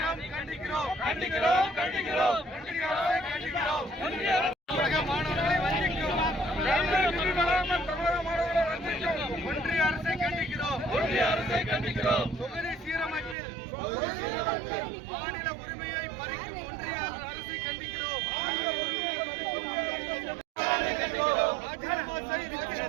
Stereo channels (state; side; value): drops out; left; at 13.4 s